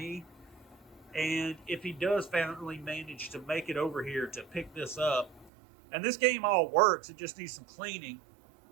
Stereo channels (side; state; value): left; drops out; at 5.5 s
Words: and if he does finally manage to make it over here to pick this up, and this game all works, it just needs some cleaning.